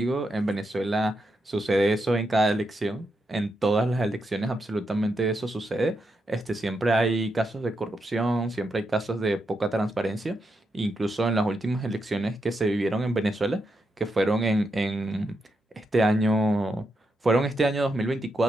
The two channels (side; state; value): both; normal; correlation 0.83